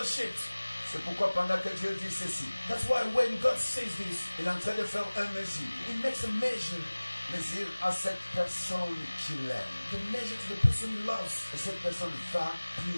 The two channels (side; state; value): both; inverted; correlation -1.00